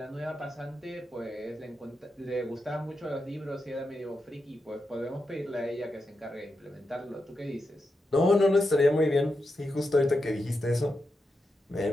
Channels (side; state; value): both; normal; correlation 0.87